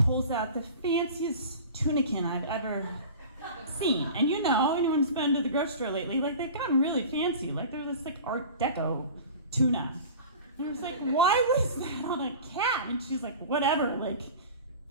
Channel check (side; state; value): both; inverted; correlation -0.37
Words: pulls out the fanciest tunican I've ever seen. And you know, anyone who's been to the grocery store lately, like they've gotten really fancy. Like they're this like Art Deco tuna. And I was like, why was that on a cat? And she's like, whatever, like